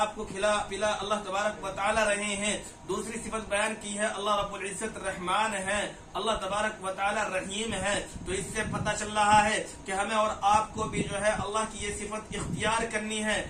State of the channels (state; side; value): identical; both; correlation 1.00